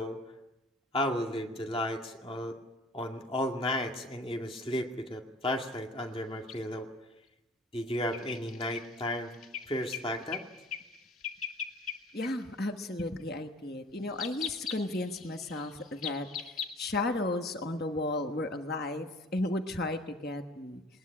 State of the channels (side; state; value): both; normal; correlation 0.48